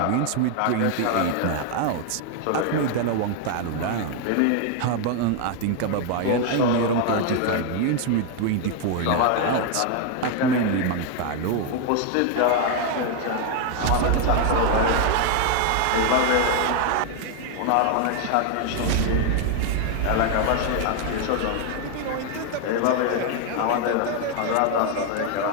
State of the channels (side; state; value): both; different; correlation 0.00